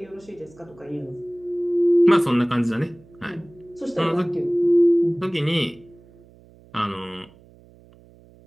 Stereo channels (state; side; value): noise; right; hum, 26 dB below the sound